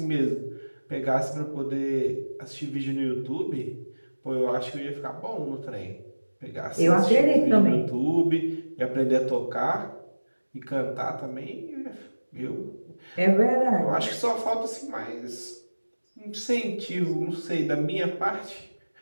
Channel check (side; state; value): both; inverted; correlation -1.00